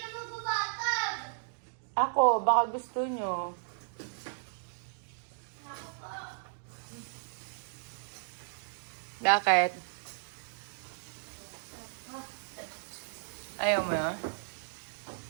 magbabatag? Ako, baka gusto nyo. Bakit? Ayaw mo yun?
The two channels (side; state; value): left; silent; digital silence